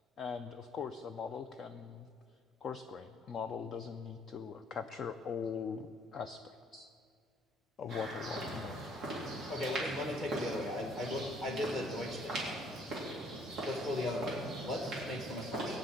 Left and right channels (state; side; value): normal; both; correlation 0.62